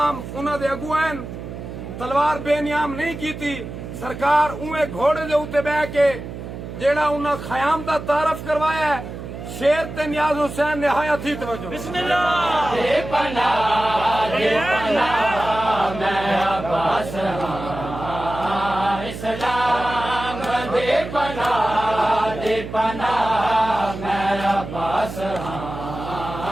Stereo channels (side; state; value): right; noise; hum, 9 dB below the sound